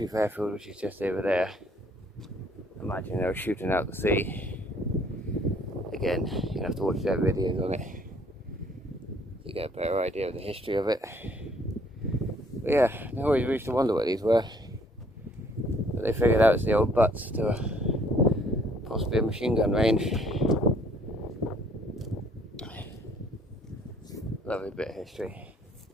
airfield, which is just over there. Imagine they were shooting out the sea. Again, you have to watch their videos on it to get a better idea of the history of it. But yeah, I always used to wonder what these were. But they figured out it's the old butts to possibly a machine gun range. Lovely bit of history.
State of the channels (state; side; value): normal; both; correlation 0.61